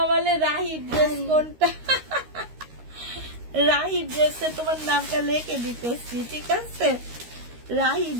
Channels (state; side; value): late; left; 13 ms